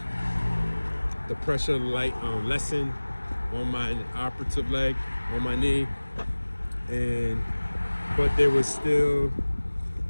pressure lessen on my operative leg, on my knee, but there was still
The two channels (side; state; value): both; inverted; correlation -1.00